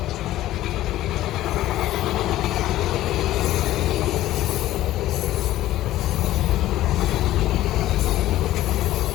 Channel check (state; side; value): quieter; right; 14.7 dB